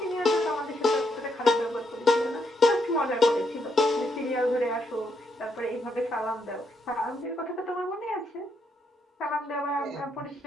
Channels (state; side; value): normal; both; correlation 0.77